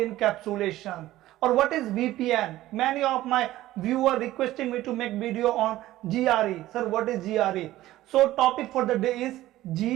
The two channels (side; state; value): left; quieter; 15.5 dB